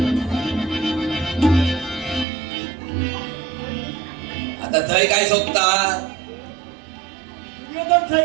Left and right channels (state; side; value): drops out; left; at 2.2 s